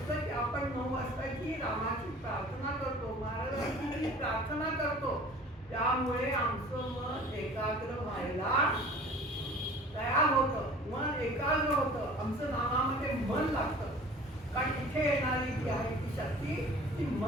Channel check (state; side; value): normal; both; correlation 0.45